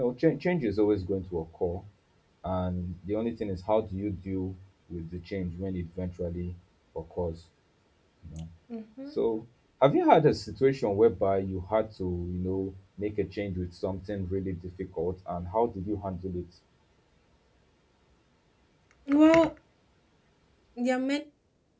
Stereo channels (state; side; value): identical; both; correlation 1.00